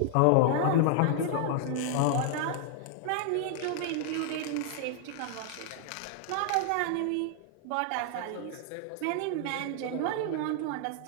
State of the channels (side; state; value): both; different; correlation 0.00